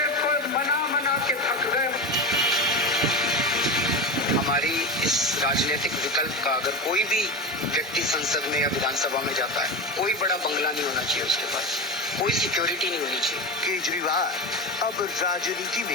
को मना के थक गए। हमारी इस राजनीतिक विकल्प का अगर कोई भी व्यक्ति संसद में या विधानसभा में जाता है, कोई बड़ा बंगला नहीं होना चाहिए उसके पास, कोई सिक्योरिटी नहीं होनी चाहिए। केजरीवाल अब राजनीति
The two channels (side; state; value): both; normal; correlation 0.21